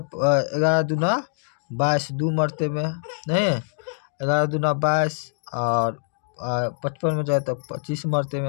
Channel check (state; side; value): silent; right; digital silence